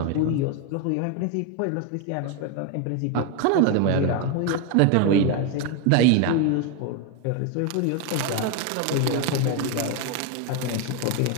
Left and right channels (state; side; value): different; both; correlation 0.02